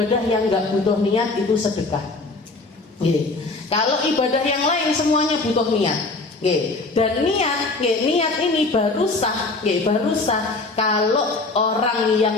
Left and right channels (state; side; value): quieter; right; 3.4 dB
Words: yang nggak butuh niat itu sedekah. Kalau ibadah yang lain semuanya butuh niat. Dan niat ini baru sah kalau orang